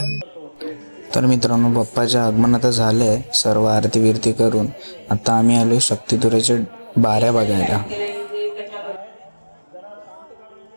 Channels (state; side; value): inverted; both; correlation -1.00